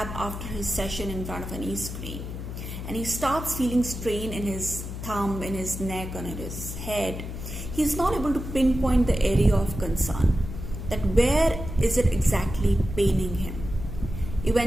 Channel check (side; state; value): left; noise; hum, 7 dB below the sound